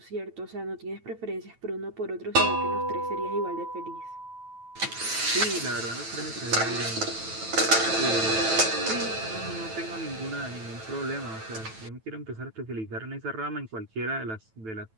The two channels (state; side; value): late; left; 9.1 ms